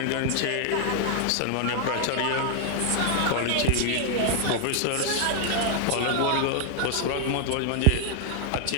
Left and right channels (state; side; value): different; both; correlation 0.00